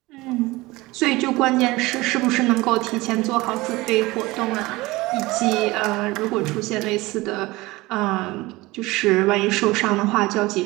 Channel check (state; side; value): quieter; left; 20.8 dB